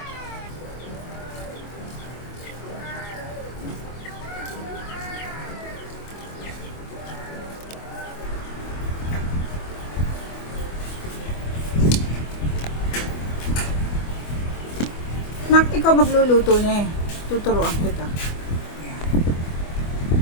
Nak, ikaw magluluto niya eh. Tuturuan kita. Ayan.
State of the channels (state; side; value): late; right; 24 ms